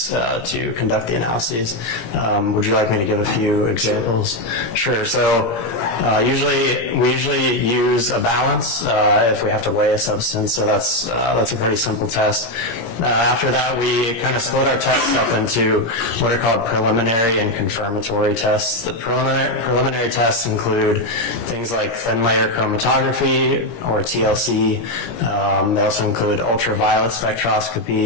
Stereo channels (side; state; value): right; late; 17 ms